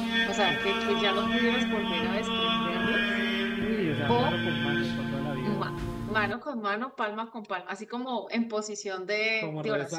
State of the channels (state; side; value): identical; both; correlation 1.00